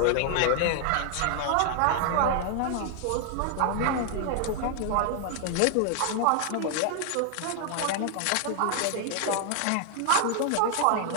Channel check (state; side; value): different; both; correlation 0.00